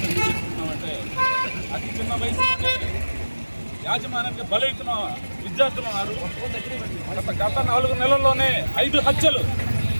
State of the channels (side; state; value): both; inverted; correlation -1.00